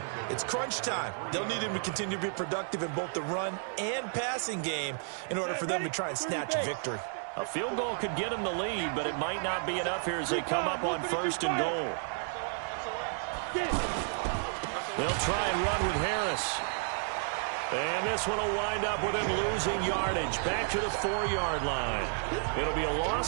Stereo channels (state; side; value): silent; left; 57 dB below the other